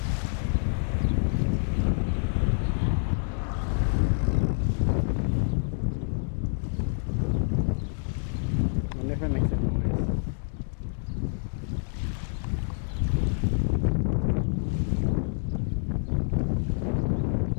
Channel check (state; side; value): silent; right; digital silence